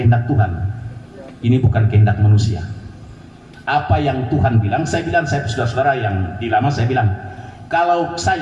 Tuhan. Ini bukan kehendak manusia. Apa yang Tuhan bilang, saya bilang, saya saudara-saudara yang di lama, saya bilang, kalau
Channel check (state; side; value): identical; both; correlation 1.00